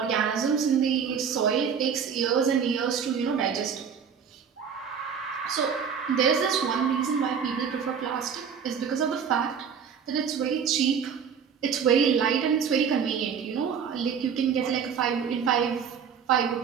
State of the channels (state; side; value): quieter; left; 7.0 dB